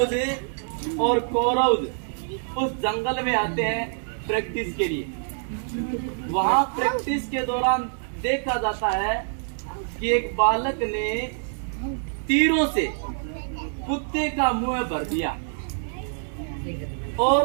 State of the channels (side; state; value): left; silent; digital silence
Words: और कौरव उस जंगल में आते हैं प्रैक्टिस के लिए। वहां प्रैक्टिस के दौरान देखा जाता है कि एक बालक ने तीरों से कुत्ते का मुंह भर दिया और